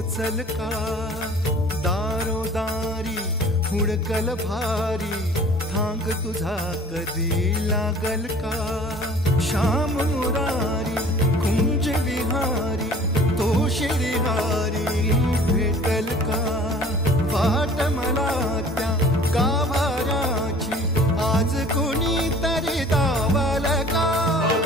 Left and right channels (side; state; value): both; normal; correlation 0.48